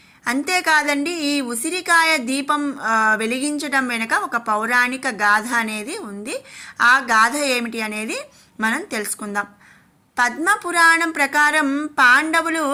అంతేకాదండి, ఈ ఉసిరికాయ దీపం వెలిగించడం వెనుక ఒక పౌరాణిక గాథ అనేది ఉంది. ఆ గాథ ఏమిటి అనేది మనం తెలుసుకుందాం. పద్మపురాణం ప్రకారం పాండవులు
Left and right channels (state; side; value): identical; both; correlation 1.00